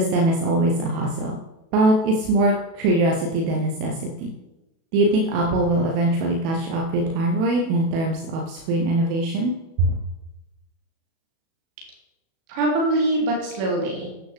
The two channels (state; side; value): late; left; 37 ms